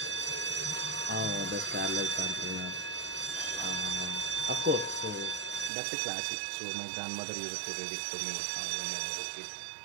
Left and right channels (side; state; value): left; drops out; at 5.7 s